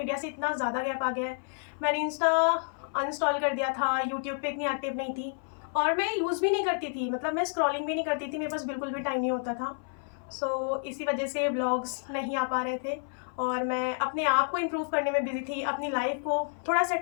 से इतना ज़्यादा गैप आ गया है। मैंने इंस्टा अनइंस्टॉल कर दिया था, यूट्यूब पे इतनी एक्टिव नहीं थी और मैं यूज़ भी नहीं करती थी, मतलब मैं स्क्रॉलिंग भी नहीं करती थी, मेरे पास बिल्कुल भी टाइम नहीं होता था। इसी वजह से व्लॉग्स नहीं आ पा रहे थे और मैं अपने आप को इम्प्रूव करने में बिज़ी थी, अपनी लाइफ को थोड़ा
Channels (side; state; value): right; silent; 58 dB below the other